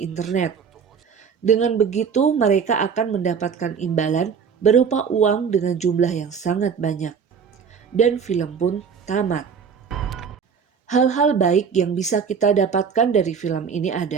internet. Dengan begitu, mereka akan mendapatkan imbalan berupa uang dengan jumlah yang sangat banyak. Dan film pun tamat. Hal-hal baik yang bisa kita dapatkan dari film ini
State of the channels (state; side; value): quieter; left; 6.5 dB